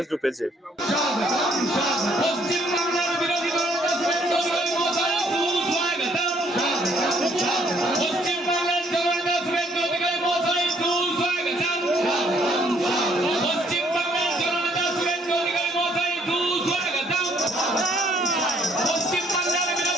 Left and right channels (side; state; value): both; normal; correlation 0.66